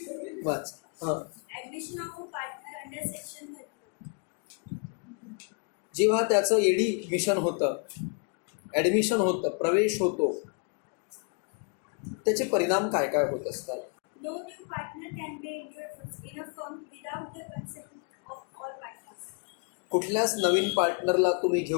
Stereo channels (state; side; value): quieter; right; 36.3 dB